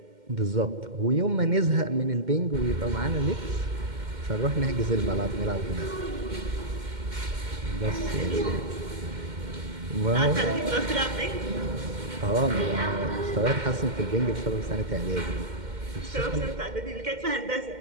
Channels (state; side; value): late; left; 2.1 ms